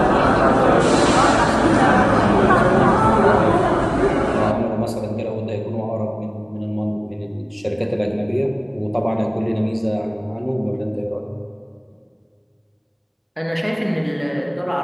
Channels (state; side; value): identical; both; correlation 1.00